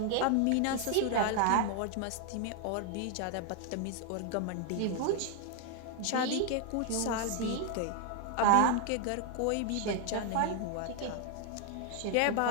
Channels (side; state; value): both; different; correlation 0.00